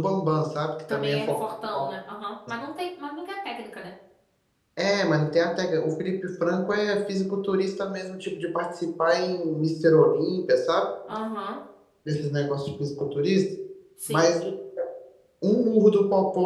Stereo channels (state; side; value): identical; both; correlation 1.00